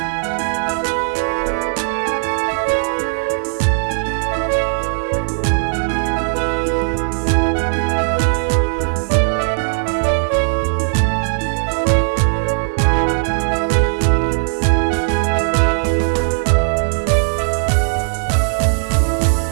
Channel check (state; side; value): silent; left; 68 dB below the other